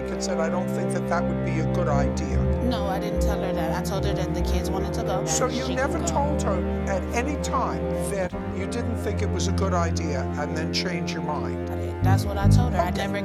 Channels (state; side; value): identical; both; correlation 1.00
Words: said, I don't think that that would be a good idea. No, I didn't tell her that. I told her that the kids wanted to go. So and you she never could go. told her at any time that you didn't think it was a good idea and then change your mind? That's what I told her. I never